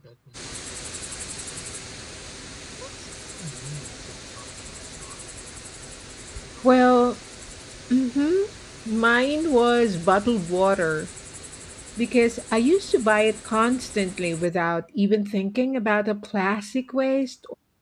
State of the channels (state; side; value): identical; both; correlation 1.00